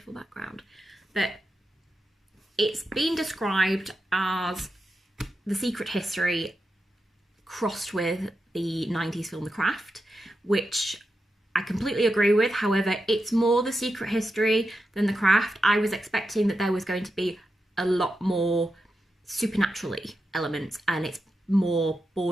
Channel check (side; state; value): both; normal; correlation 0.88